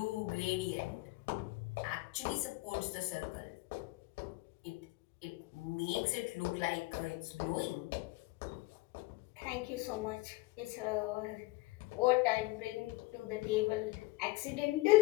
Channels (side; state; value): right; quieter; 21.4 dB